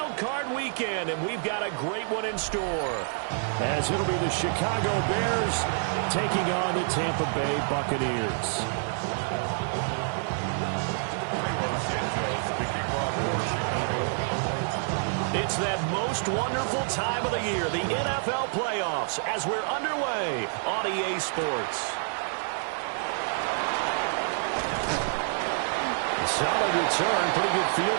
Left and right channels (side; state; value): left; silent; digital silence